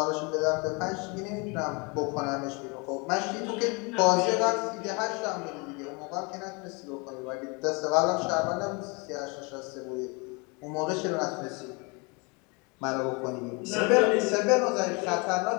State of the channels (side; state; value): right; quieter; 30.1 dB